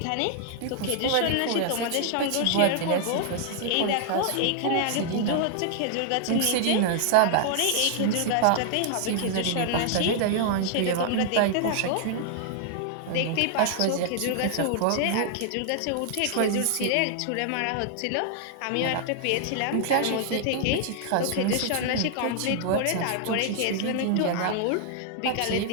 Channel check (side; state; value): both; different; correlation -0.01